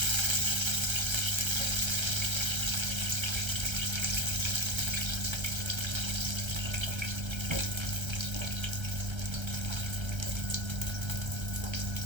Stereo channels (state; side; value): late; left; 1.3 ms